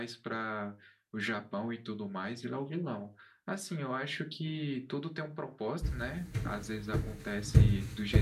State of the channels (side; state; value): both; identical; correlation 1.00